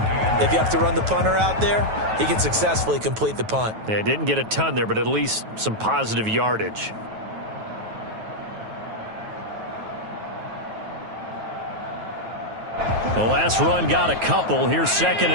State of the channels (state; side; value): late; left; 9.2 ms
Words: If you have to run the punter out there, he can successfully complete the punt. Yeah, didn't get a ton there, but at least some positive yardage. The last run got a couple. Here's 2nd